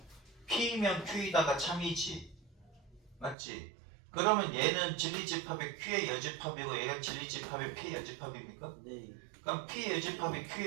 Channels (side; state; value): left; drops out; at 3.4 s